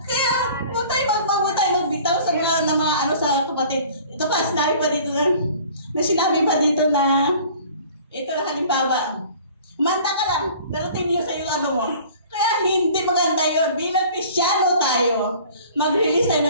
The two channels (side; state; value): both; inverted; correlation -0.48